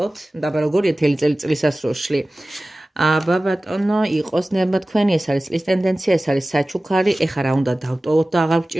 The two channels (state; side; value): normal; both; correlation 0.97